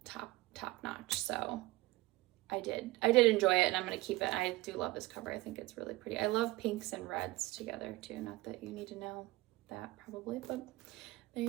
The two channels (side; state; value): left; quieter; 19.8 dB